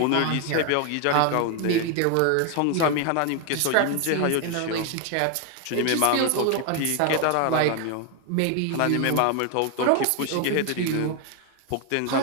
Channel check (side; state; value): both; different; correlation 0.01